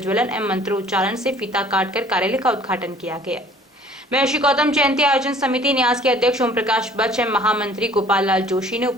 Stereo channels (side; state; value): both; normal; correlation 0.52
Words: एवं मंत्रोच्चारण से फीता काटकर कार्यालय का उद्घाटन किया गया। महर्षि गौतम जयंती आयोजन समिति न्यास के अध्यक्ष ओम प्रकाश बच एवं महामंत्री गोपाल लाल जोशी ने